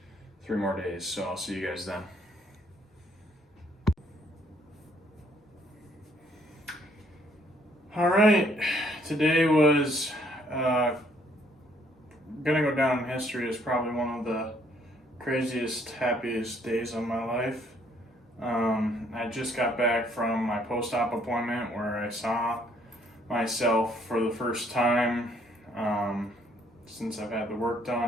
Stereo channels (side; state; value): both; normal; correlation 0.66